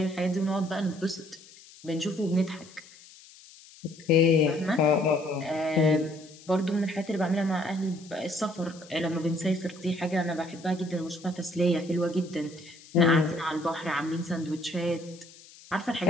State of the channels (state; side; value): noise; left; hiss, 22 dB below the sound